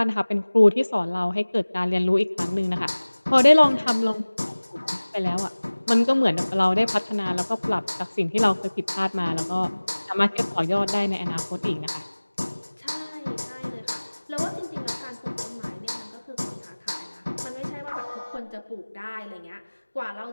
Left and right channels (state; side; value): inverted; both; correlation -1.00